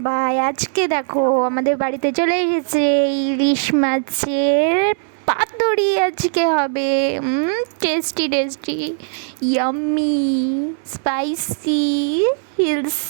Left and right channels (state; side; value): silent; left; digital silence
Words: আজকে দেখো আমাদের বাড়িতে চলে এসেছে ইলিশ মাছের পাতুরি। আজকে হবে tasty tasty, yummy, spicy,